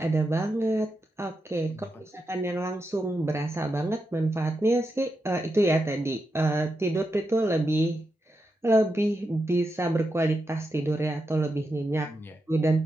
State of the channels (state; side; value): normal; both; correlation 0.87